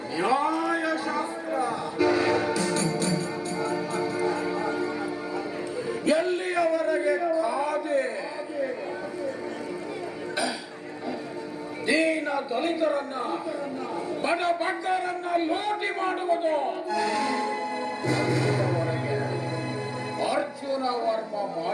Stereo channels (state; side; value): identical; both; correlation 1.00